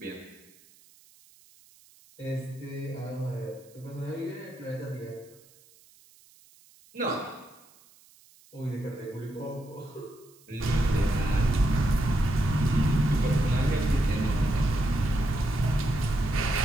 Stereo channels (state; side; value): noise; right; hiss, 28 dB below the sound